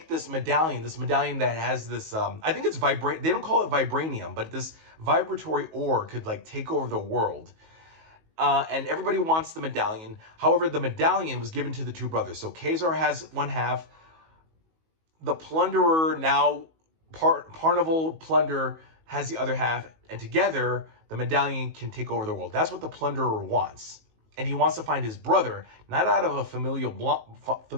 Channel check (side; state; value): left; late; 19 ms